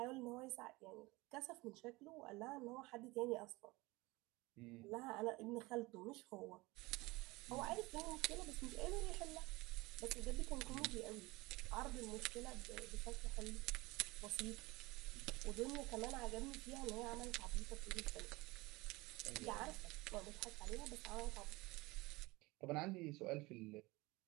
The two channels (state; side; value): quieter; left; 22.3 dB